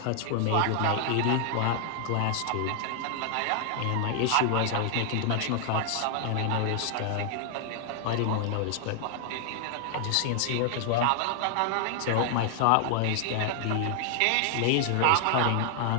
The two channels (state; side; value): different; both; correlation 0.00